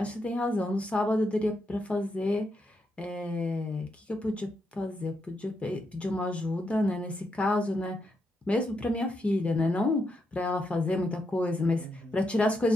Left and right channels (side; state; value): both; normal; correlation 0.82